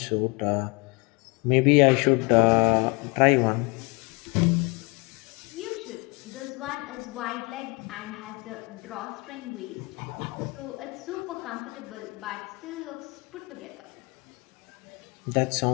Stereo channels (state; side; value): quieter; right; 28.1 dB